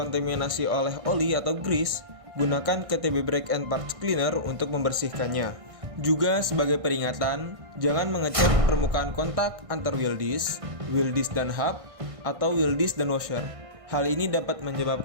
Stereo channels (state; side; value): late; left; 1.6 ms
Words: oleh oli atau grease, gunakan KTB Brake and Parts Cleaner untuk membersihkannya. Juga sebagai peringatan, jangan mengecat permukaan kontak antar wheel disc dan hub, atau wheel disc dan washer. Hal ini dapat